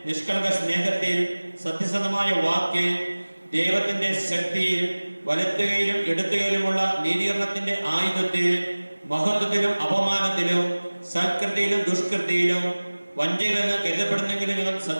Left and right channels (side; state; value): both; inverted; correlation -1.00